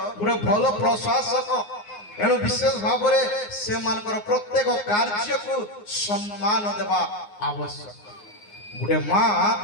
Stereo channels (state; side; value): late; right; 9.6 ms